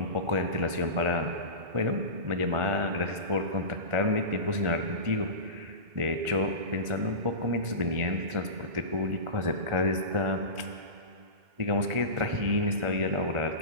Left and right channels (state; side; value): late; left; 1.5 ms